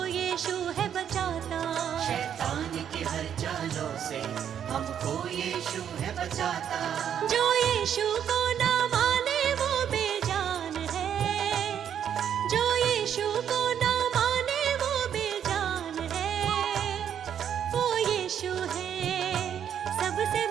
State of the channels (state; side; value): quieter; left; 9.0 dB